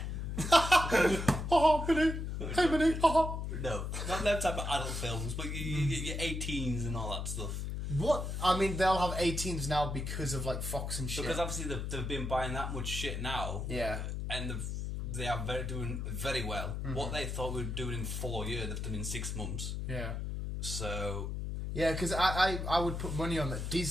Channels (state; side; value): noise; left; hum, 3 dB below the sound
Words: Minnie. Hey, Minnie. No, not them type of adult films, but your 18s and all that stuff. What? I mean, they'll have 18s now because of like Fox and shit. Because obviously they've been buying that much shit now. Yeah. And they are doing very well. What they thought we were doing in 4 years, they've done in 6 months. Yeah. So. Yeah, because I would put money on that